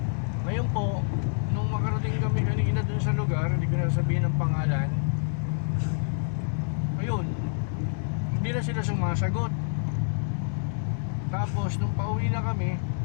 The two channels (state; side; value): silent; right; 60 dB below the other